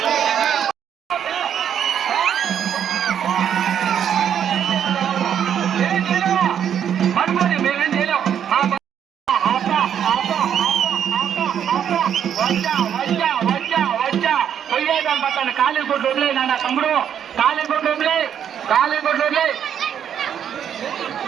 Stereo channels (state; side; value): quieter; left; 8.9 dB